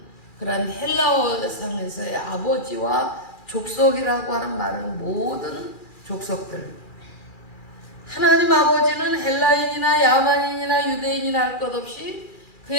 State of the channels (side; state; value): right; late; 2.4 ms